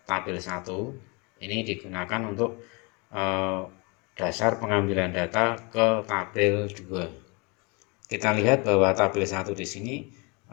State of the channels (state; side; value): quieter; right; 29.9 dB